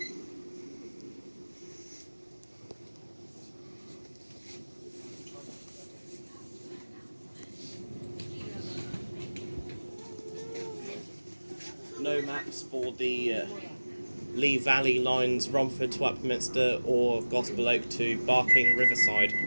No maps for the Lee Valley lines, Romford to Upminster or Gospel Oak to Barking Riverside.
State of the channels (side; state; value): both; inverted; correlation -1.00